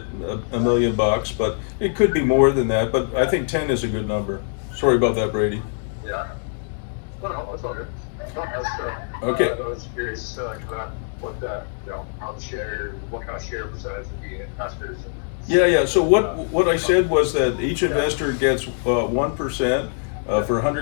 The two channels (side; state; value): right; silent; 63 dB below the other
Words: million, but it could be more than that. But I think 10 is a good number. Sorry about that, Brady. Yeah. No, it's all good. No, okay. I was curious what kind of share percentage would be investors. Yeah. So what I said was that each investor gets 1% for